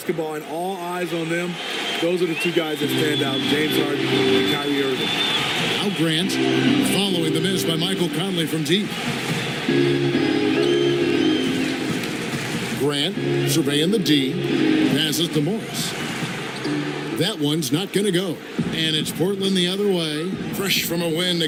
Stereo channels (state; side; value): identical; both; correlation 1.00